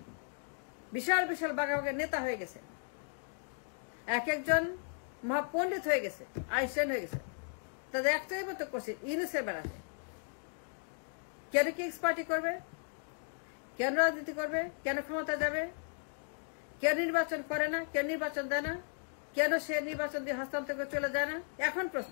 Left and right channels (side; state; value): right; silent; 54 dB below the other